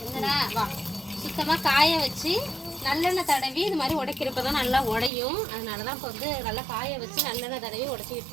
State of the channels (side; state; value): left; drops out; at 5.1 s